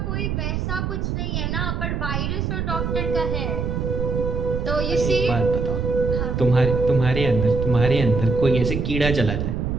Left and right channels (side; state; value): right; noise; rumble, 1 dB below the sound